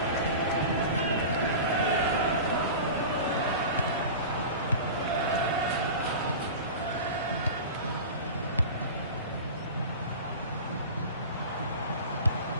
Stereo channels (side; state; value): both; inverted; correlation -0.32